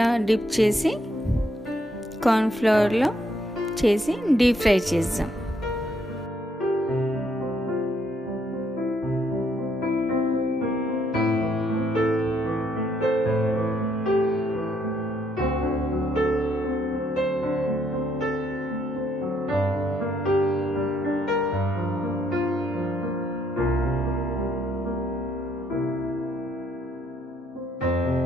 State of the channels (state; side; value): normal; both; correlation 0.72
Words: డిప్ చేసి కార్న్ఫ్లవర్లో చేసి డీప్ ఫ్రై చేద్దాం.